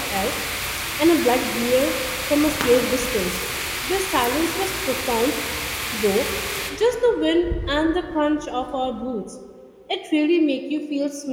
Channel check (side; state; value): both; identical; correlation 1.00